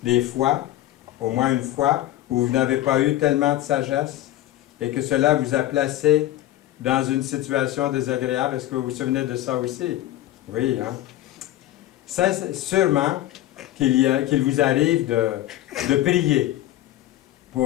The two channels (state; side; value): quieter; right; 14.3 dB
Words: des fois, au moins une fois, où vous n'avez pas eu tellement de sagesse et que cela vous a placé dans une situation désagréable? Est-ce que vous vous souvenez de ça aussi? Oui, hein? Ça, sûrement qu'il vous arrive de prier